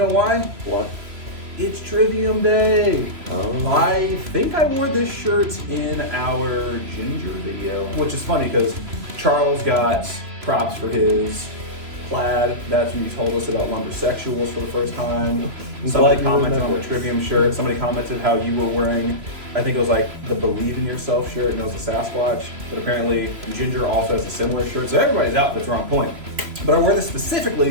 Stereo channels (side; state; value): left; late; 3.0 ms